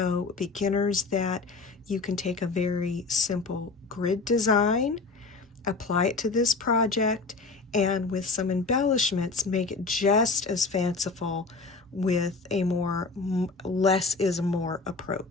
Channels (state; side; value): quieter; right; 4.0 dB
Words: beginners that you can take a very simple grid design, apply it to this project, and with some embellishments, make it just as fanciful with a more less is more